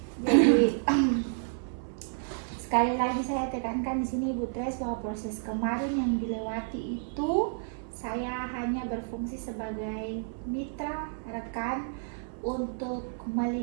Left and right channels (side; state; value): left; silent; 58 dB below the other